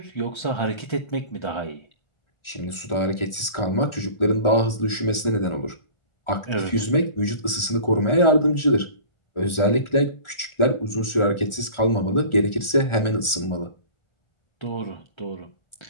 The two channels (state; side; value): late; right; 1.4 ms